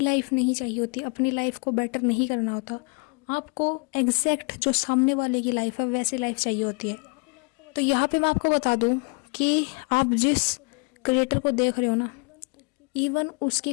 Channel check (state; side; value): quieter; right; 33.5 dB